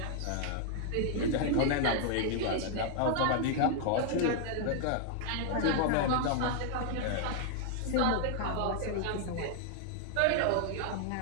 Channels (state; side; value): different; both; correlation 0.00